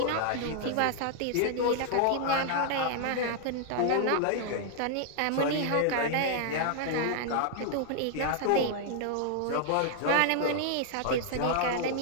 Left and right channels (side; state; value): both; different; correlation 0.00